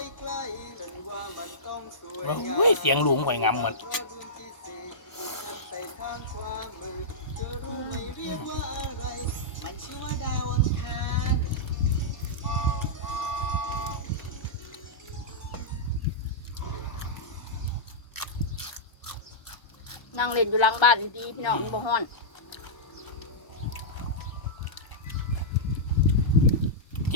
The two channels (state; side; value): late; right; 1.0 ms